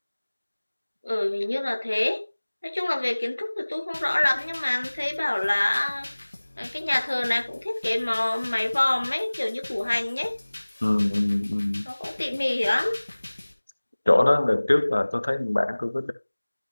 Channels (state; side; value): inverted; both; correlation -1.00